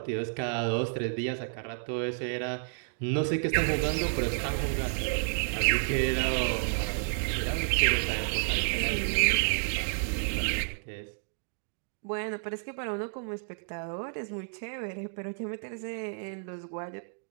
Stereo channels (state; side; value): silent; left; digital silence